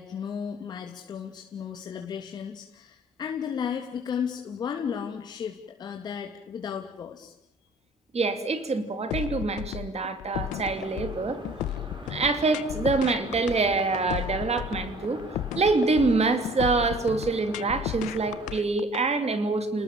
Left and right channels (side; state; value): both; normal; correlation 0.51